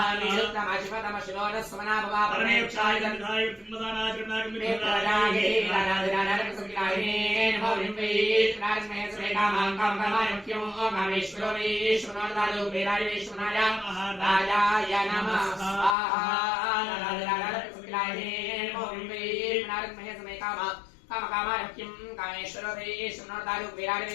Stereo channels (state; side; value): drops out; right; at 16.0 s